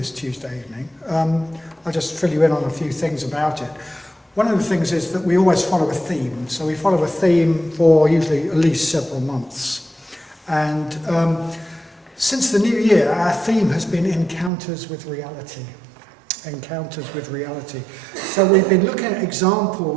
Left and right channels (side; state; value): left; drops out; at 14.5 s